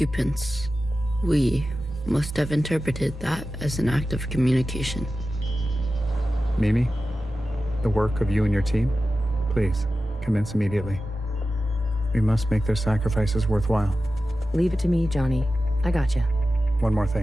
we, must have interpreted that as an act of communication. Mimi, the work of you and your team, please, commence immediately. We must make their sacrifices worthwhile. Leave it to me, Johnny. I gotcha. One more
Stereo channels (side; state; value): both; normal; correlation 0.94